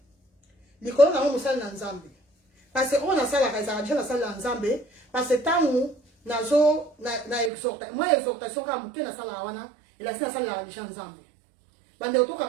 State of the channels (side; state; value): left; drops out; at 7.5 s